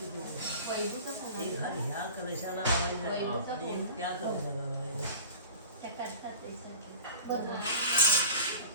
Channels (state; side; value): inverted; both; correlation -0.37